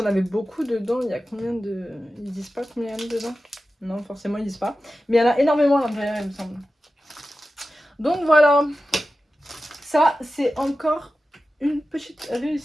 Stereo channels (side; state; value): both; normal; correlation 0.93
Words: avez beaucoup dedans. Il y a combien de. Ils disent pas combien il y en a dedans? Non, forcément ils disent pas. Mais il y en a énormément à l'intérieur il me semble. Donc voilà. Ça c'est encore une petite